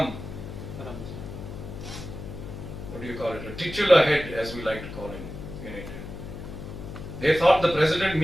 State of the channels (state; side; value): noise; left; hum, 10 dB below the sound